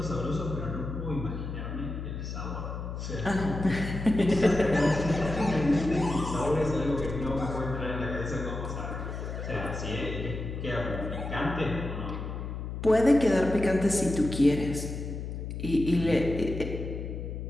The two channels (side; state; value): left; noise; hum, 6 dB below the sound